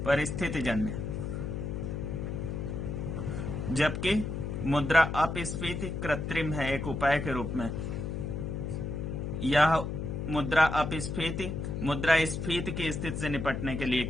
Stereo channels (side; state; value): left; noise; hum, 4 dB below the sound